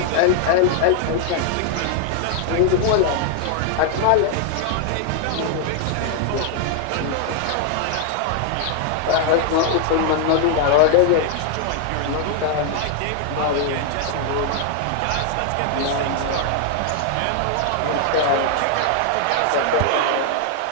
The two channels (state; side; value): different; both; correlation 0.00